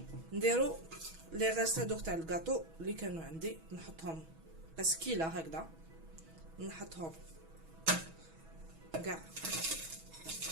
نديرو لي غاست هادوك تاع الكاطو اللي كانوا عندي، نحطهم بسكيله هكذا، نحطهم كاع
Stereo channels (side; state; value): left; late; 6.2 ms